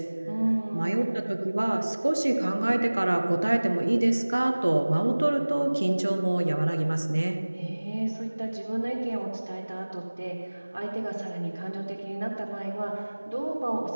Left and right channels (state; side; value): inverted; both; correlation -1.00